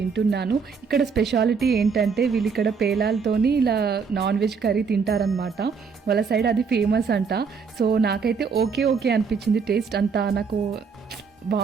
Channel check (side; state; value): left; quieter; 5.6 dB